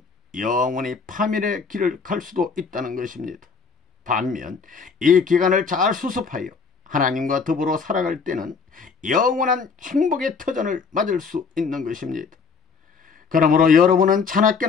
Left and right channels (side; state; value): right; quieter; 5.2 dB